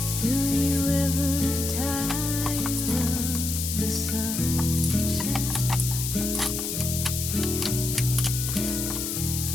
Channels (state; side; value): noise; left; hiss, 3 dB below the sound